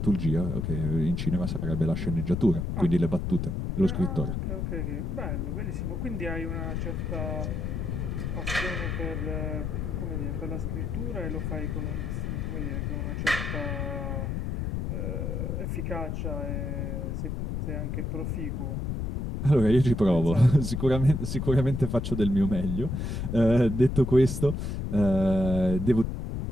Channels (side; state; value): left; noise; rumble, 2 dB below the sound